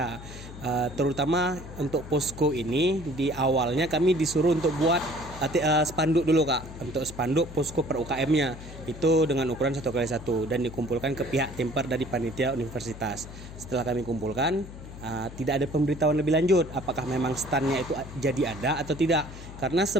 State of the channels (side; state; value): left; noise; hum, 14 dB below the sound